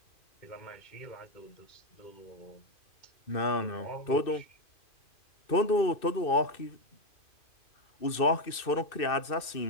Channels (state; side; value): late; right; 2.6 ms